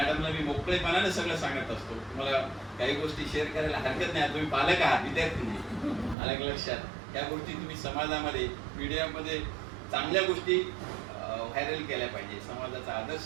मी मोकळेपणाने सगळं सांगत असतो. मला काही गोष्टी शेअर करायला हरकत नाही, तुम्ही पालक आहात, विद्यार्थी नाही, आलं लक्षात. या गोष्टी तुम्ही समाजामध्ये, मीडियामध्ये चांगल्या गोष्टी व्हायरल केल्या पाहिजे, समाजाचा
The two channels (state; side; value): drops out; left; at 6.2 s